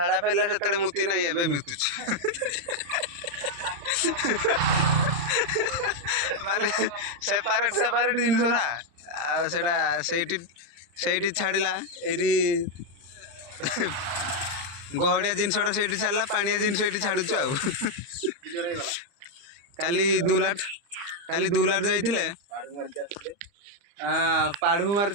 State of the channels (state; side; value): late; left; 35 ms